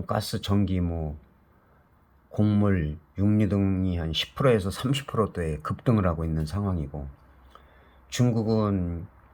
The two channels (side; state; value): both; identical; correlation 1.00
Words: 가스, 전기, 곡물, 육류 등이 한 10%에서 30%대 급등을 하고 있는 상황이고, 중국은